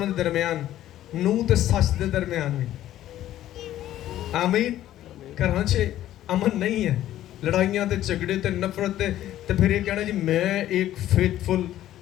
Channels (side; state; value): right; quieter; 13.0 dB